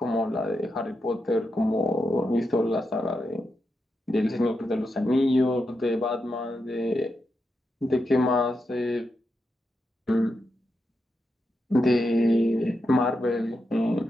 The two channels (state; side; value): normal; both; correlation 0.86